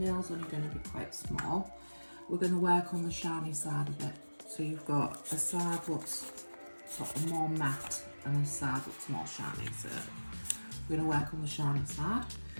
only going to be quite small. We're going to work on the shiny side of it. So you've got a side that's sort of more matte and a side that's more shiny. So we're going to work on the shiny side.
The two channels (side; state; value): both; inverted; correlation -1.00